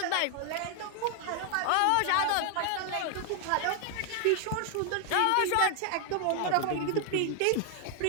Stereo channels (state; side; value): different; both; correlation 0.00